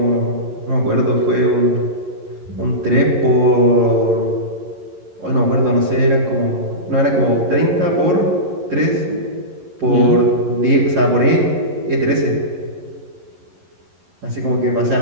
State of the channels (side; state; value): left; late; 11 ms